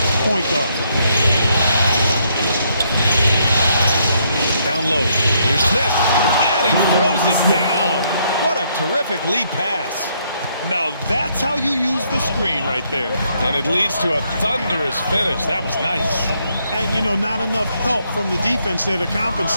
point guard. Down low. Here's Smith. And he throws it down. What a terrific lead pass. Now that's how you use the screen right there. And it leads to a thunderous finish. That was nice. And, you know, not enough help from the defense there to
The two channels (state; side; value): inverted; both; correlation -0.73